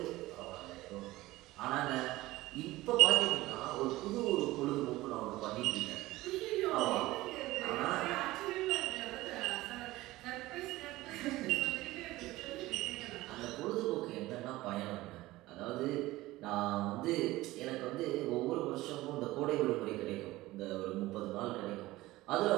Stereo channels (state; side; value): quieter; left; 18.1 dB